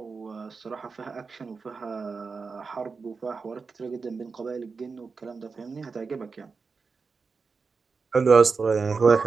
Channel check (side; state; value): left; quieter; 4.8 dB